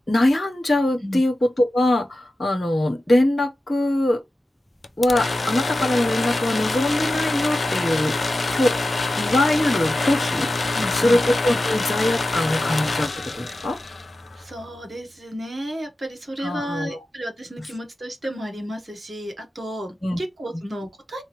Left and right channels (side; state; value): both; normal; correlation 0.93